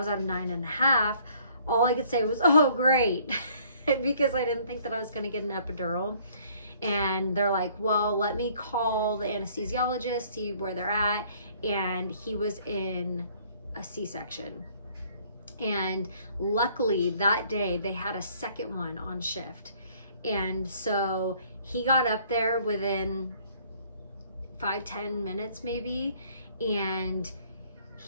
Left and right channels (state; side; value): inverted; both; correlation -0.60